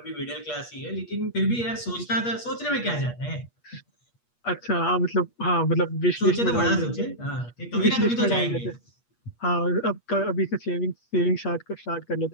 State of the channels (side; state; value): right; late; 8.4 ms